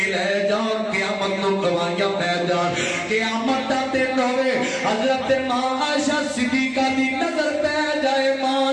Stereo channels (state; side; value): identical; both; correlation 1.00